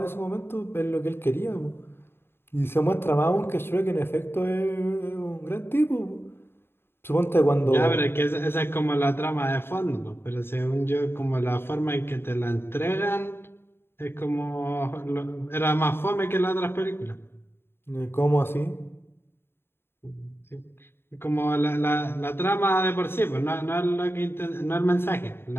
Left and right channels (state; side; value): late; right; 0.11 ms